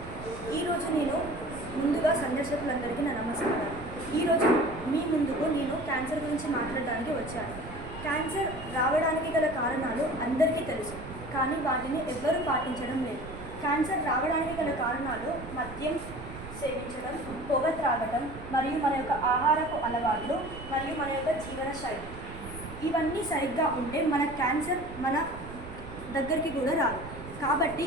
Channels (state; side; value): noise; right; rumble, 13 dB below the sound